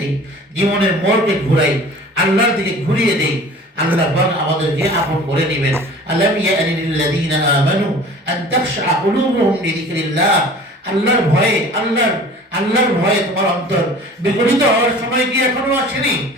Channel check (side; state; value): both; normal; correlation 0.44